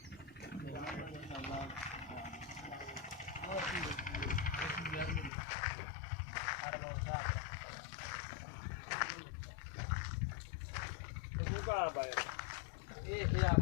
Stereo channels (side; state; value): right; drops out; at 5.3 s